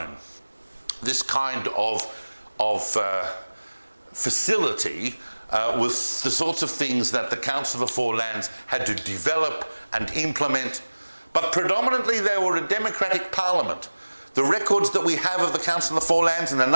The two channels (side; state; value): both; inverted; correlation -1.00